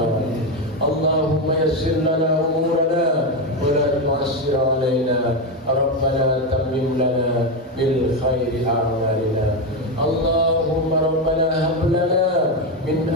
Allahumma yassir lana umurana wa la tu'assir alaina. Rabbana tammim lana bil khairi a'malina. Allahumma rabbana hab lana min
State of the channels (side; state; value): both; normal; correlation 0.11